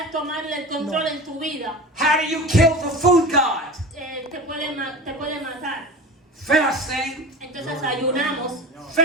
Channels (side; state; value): both; normal; correlation 0.33